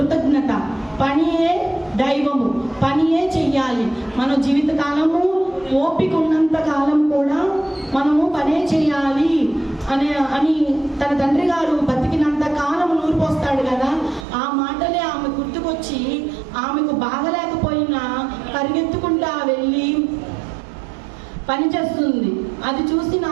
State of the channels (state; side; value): drops out; left; at 14.2 s